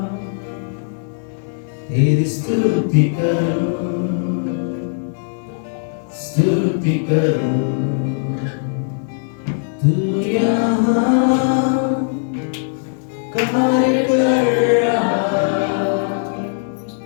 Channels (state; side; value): silent; right; digital silence